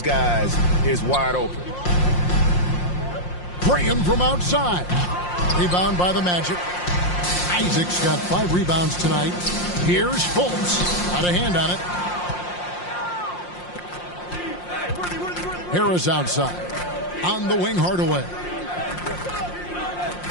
guys is wide open. Graham from outside. Rebound by the Magic. Isaac's got 5 rebounds tonight. Here's Fultz. Out of hand on it. Harris outside. On the wing, Hardaway.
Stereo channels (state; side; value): late; right; 5.6 ms